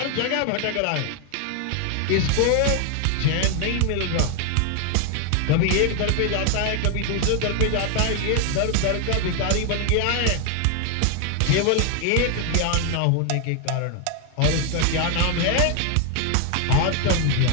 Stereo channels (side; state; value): both; different; correlation 0.01